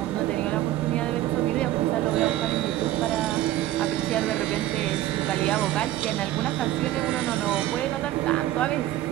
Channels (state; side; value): quieter; left; 14.4 dB